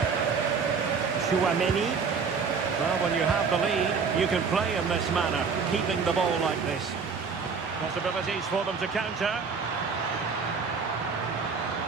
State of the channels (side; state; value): left; quieter; 5.5 dB